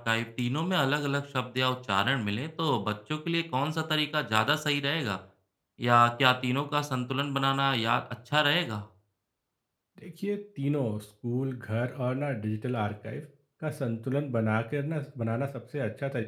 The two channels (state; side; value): identical; both; correlation 1.00